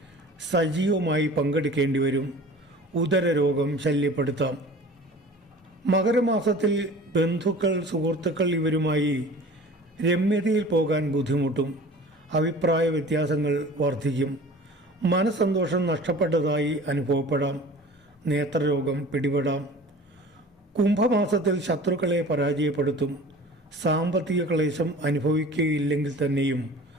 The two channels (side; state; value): both; normal; correlation 0.42